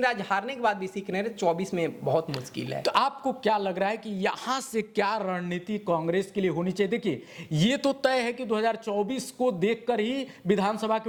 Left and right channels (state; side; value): identical; both; correlation 1.00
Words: राज्य हारने के बाद भी सीख नहीं रहे, 24 में बहुत मुश्किल है। तो आपको क्या लग रहा है कि यहाँ से क्या रणनीति कांग्रेस के लिए होनी चाहिए? देखिए, ये तो तय है कि 2024 को देखकर ही विधानसभा